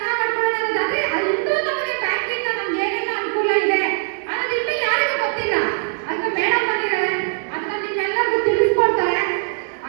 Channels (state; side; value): silent; left; 65 dB below the other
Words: ಮಾಡ್ಕೊಳ್ಳೋದಾದ್ರೆ ಇನ್ನೂ ನಮಗೆ ಬ್ಯಾಂಕಿಂದ ನಮ್ಗೆ ಏನೆಲ್ಲ ಅನುಕೂಲ ಇದೆ ಅನ್ನೋದು ಇನ್ನೂ ಯಾರಿಗೂ ಗೊತ್ತಿಲ್ಲ. ಅದಕ್ಕೆ ಮೇಡಮ್ ಬಂದಿದ್ದಾರೆ, ಅದನ್ನ ನಿಮ್ಮೆಲ್ಲರಿಗೂ ತಿಳಿಸ್ಕೊಡ್ತಾರೆ.